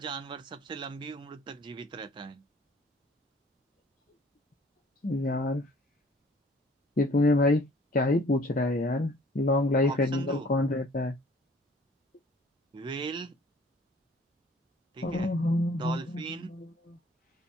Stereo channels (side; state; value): both; normal; correlation 0.54